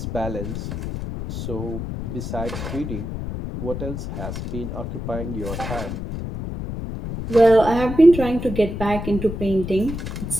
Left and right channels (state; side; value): noise; left; rumble, 6 dB below the sound